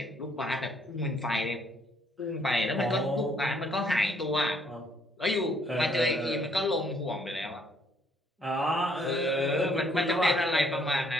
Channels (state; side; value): normal; both; correlation 0.67